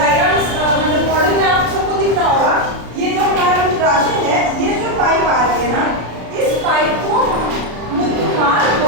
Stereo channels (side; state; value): left; late; 33 ms